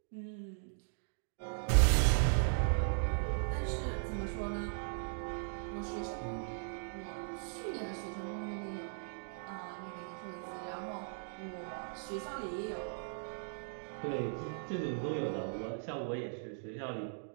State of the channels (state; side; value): silent; left; digital silence